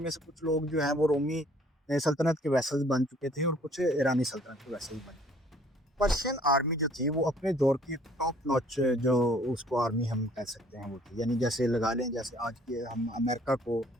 میں سے کچھ لوگ جو ہیں وہ رومی سلطنت کے ویسل بن چکے تھے، اور کچھ ایرانی سلطنت کے ویسل بن چکے تھے۔ پرشین آرمی جو تھی وہ اپنے دور کی ٹاپ نوچ جو اس کو آرمی ہم کہہ سکتے ہیں وہ تھی، یعنی جیسے لگا لیں جیسے آج کے ہم امریکہ کو،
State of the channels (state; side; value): normal; both; correlation 0.58